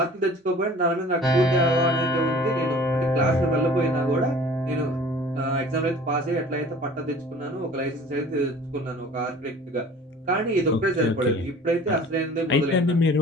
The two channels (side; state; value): both; normal; correlation 0.46